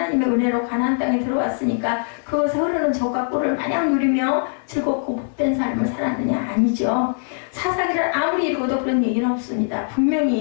은혜로 가나안 땅에 들어왔으니까 그것에 흐르는 젖과 꿀을 마냥 누리며 즐겁고 복된 삶을 살았느냐? 아니죠. 사사기를 아무리 읽어도 그런 얘기는 없습니다.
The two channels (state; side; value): silent; right; 61 dB below the other